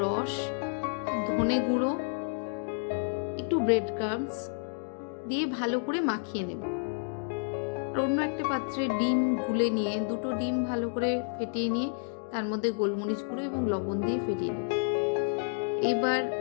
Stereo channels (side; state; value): right; silent; digital silence